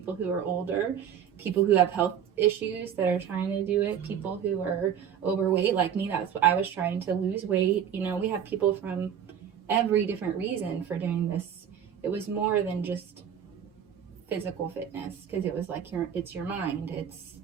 who are older, people who have health issues that are trying to do it, people who are overweight like me. That's what I was trying to lose weight. You know, we have people from every different reason for doing this. It was more than just physical fitness, because it was like it's your mind. It's,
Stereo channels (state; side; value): quieter; left; 8.7 dB